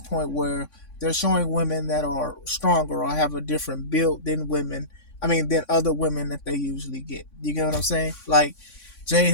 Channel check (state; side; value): late; right; 3.6 ms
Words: where they're showing women that are stronger or have a different build than than other women that they usually get. You get what I'm saying? Like, Jade